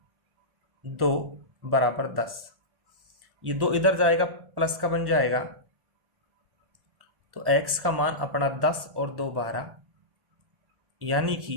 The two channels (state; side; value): late; left; 1.1 ms